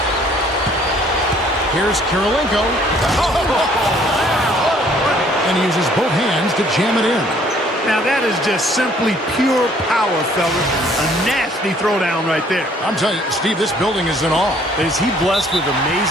Here's Kirilenko. And he uses both hands to jam it in. Now that is just simply pure power, fellas. A nasty throwdown right there. I'm telling you, Steve, this building is in awe. Is he blessed with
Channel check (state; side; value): normal; both; correlation 0.60